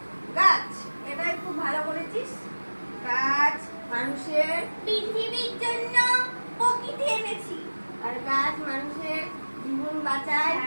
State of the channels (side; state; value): both; inverted; correlation -1.00